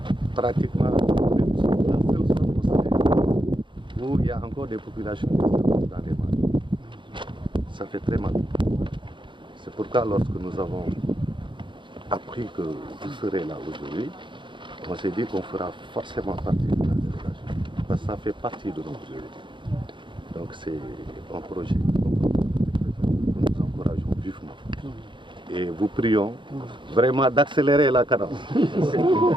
pratiquement la seule zone au Sénégal où il y a encore des populations qui sont dans les mares. Ça fait très mal. C'est pourquoi lorsque nous avons appris que vous serez là aujourd'hui, on s'est dit qu'on fera forcément partie de la délégation. Parce que ça fait partie de nos priorités. Donc c'est un projet que nous encourageons vivement. Et vous prions vraiment d'accélérer la cadence.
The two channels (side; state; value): left; late; 0.23 ms